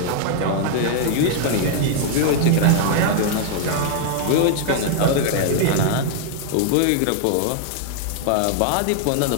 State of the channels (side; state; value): both; different; correlation 0.00